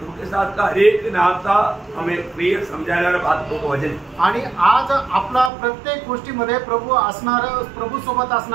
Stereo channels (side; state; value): left; drops out; at 5.5 s